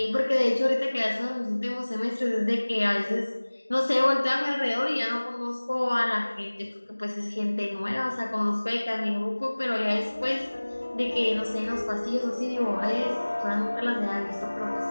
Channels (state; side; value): inverted; both; correlation -1.00